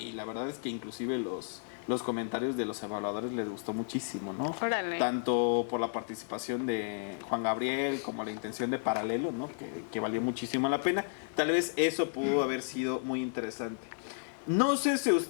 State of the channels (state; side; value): silent; right; digital silence